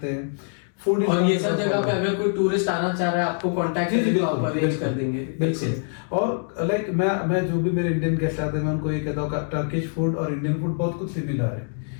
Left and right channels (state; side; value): silent; right; 62 dB below the other